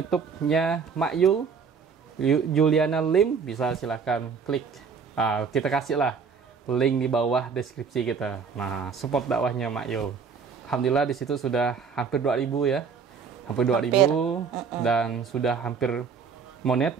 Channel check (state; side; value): quieter; left; 5.9 dB